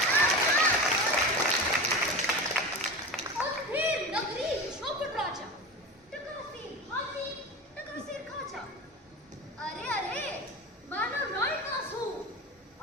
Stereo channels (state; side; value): normal; both; correlation 0.28